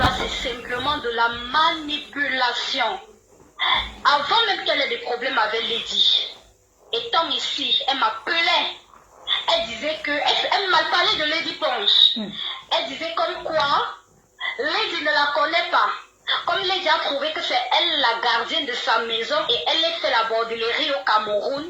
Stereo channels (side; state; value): both; identical; correlation 1.00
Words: c'est simplement de la manipulation. Avant même qu'elle ait des problèmes avec Lady, étant ici, elle m'appelait. Elle disait que... Elle m'a parlé de Lady Ponce. Elle disait comme quoi Lady ne la connaît pas. Comme Lady a trouvé que c'est elle la gardienne de sa maison et elle a fait la bordellerie au Cameroun,